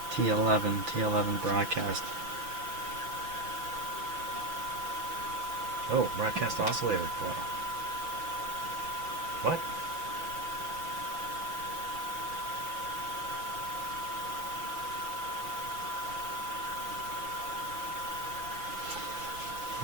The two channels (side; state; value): left; late; 5.9 ms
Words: T11 broadcast. Oh, broadcast oscillator coil. What?